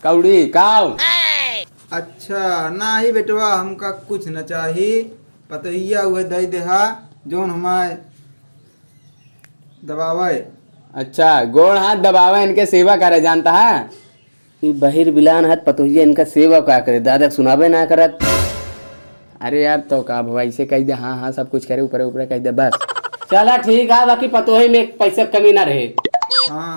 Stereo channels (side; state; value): both; inverted; correlation -1.00